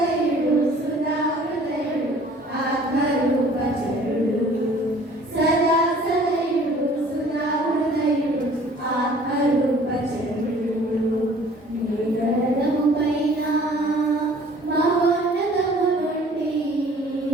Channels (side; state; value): both; normal; correlation 0.52